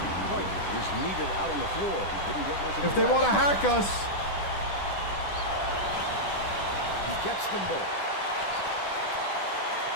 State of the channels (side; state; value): right; late; 10 ms